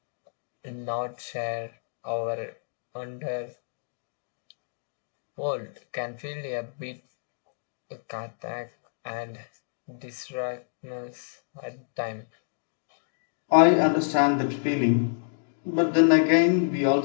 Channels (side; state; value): right; silent; digital silence